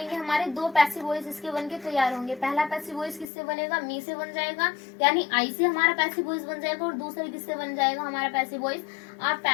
हमारे दो पैसिव वॉइस इसके बन के तैयार होंगे। पहला पैसिव वॉइस किससे बनेगा, मी से बन जाएगा, यानी आई से हमारा पैसिव वॉइस बन जाएगा, और दूसरा किससे बन जाएगा हमारा पैसिव वॉइस, आप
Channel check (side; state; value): right; drops out; at 3.2 s